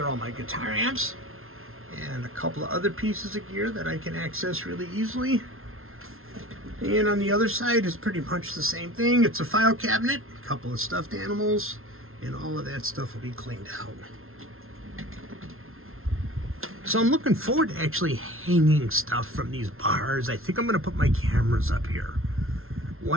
all my guitar amps. And a couple of other pieces of gear that I can access really easily. And on the other side is pretty much the same thing. It's a file cabinet, a couple of stuffed animals, and all of that stuff will be cleaned out. So I'm looking forward to actually hanging stuff from these bars. I think I'm going to put my cameras up here.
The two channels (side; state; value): left; late; 0.61 ms